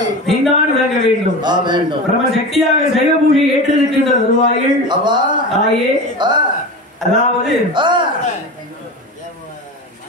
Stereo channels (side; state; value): both; normal; correlation 0.28